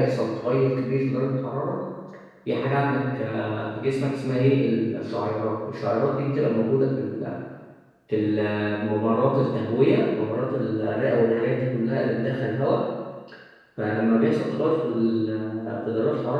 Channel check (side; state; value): both; identical; correlation 1.00